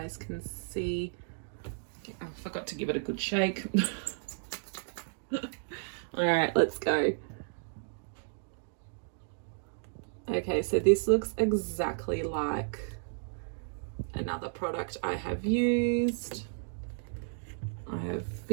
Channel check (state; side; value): silent; left; digital silence